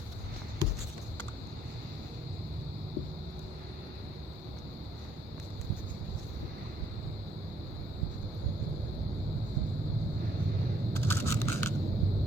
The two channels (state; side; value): normal; both; correlation 0.68